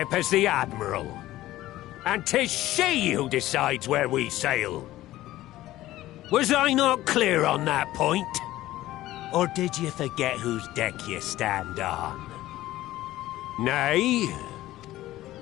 is the Admiral. And 'tis she who decides where we sail. Was I not clear on that point? Or did you forget whose deck you stand on? Nay?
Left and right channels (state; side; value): quieter; right; 15.6 dB